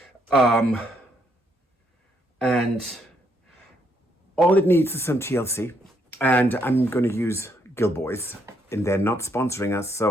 And all it needs is some TLC. And I'm going to use Gilboys. And they're not sponsoring us,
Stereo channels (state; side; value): normal; both; correlation 0.73